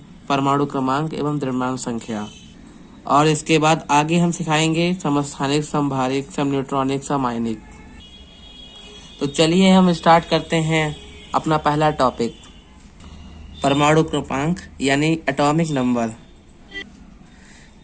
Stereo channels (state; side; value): identical; both; correlation 1.00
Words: परमाणु क्रमांक एवं द्रव्यमान संख्या। और इसके बाद आगे हम सिखाएंगे समस्थानिक, समभारिक, समन्यूट्रॉनिक, समायनिक। तो चलिए हम स्टार्ट करते हैं अपना पहला टॉपिक, परमाणु क्रमांक यानी एटॉमिक नंबर।